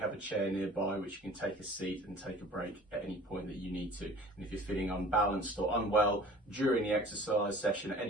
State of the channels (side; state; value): both; normal; correlation 0.45